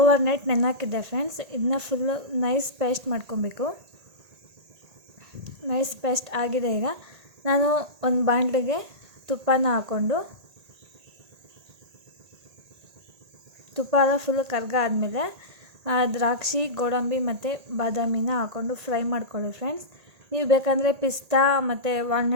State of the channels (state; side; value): late; left; 1.8 ms